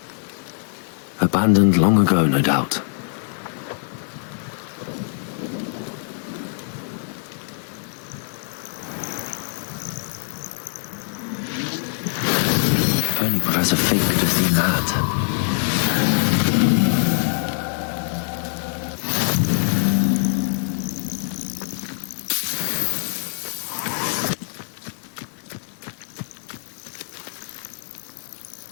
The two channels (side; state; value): right; silent; digital silence